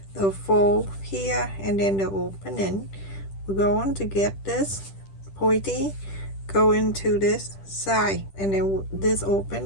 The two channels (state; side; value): late; right; 10 ms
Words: the fold here and then the opening. We're going to get this pointy go into this side, and then this